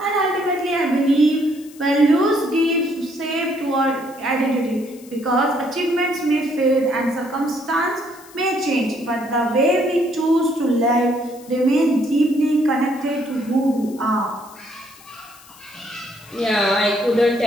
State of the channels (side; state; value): left; noise; hiss, 23 dB below the sound